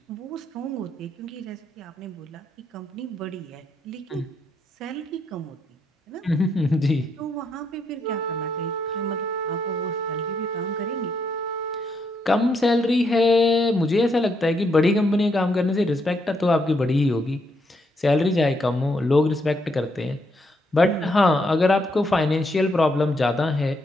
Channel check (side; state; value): both; normal; correlation 0.77